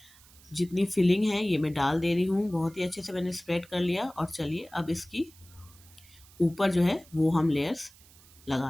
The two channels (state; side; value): noise; right; hiss, 25 dB below the sound